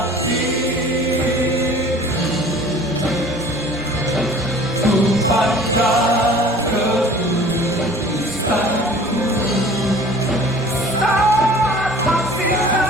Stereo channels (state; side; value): normal; both; correlation 0.46